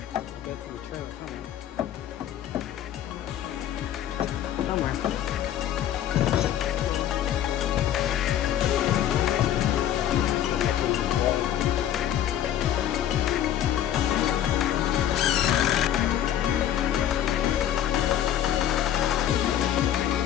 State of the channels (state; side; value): quieter; right; 11.1 dB